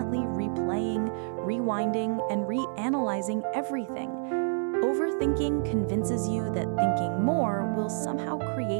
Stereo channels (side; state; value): left; silent; 59 dB below the other